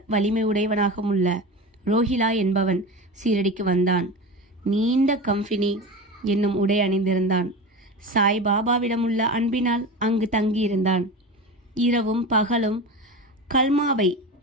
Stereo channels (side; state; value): both; normal; correlation 0.28